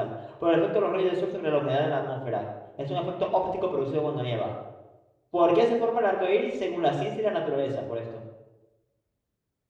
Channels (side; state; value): both; identical; correlation 1.00